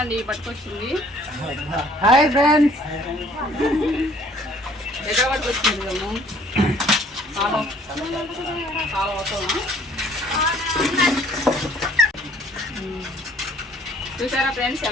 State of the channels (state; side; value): normal; both; correlation 0.58